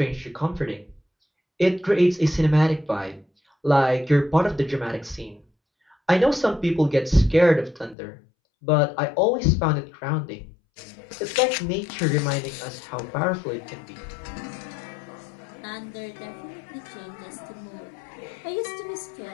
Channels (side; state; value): right; drops out; at 8.0 s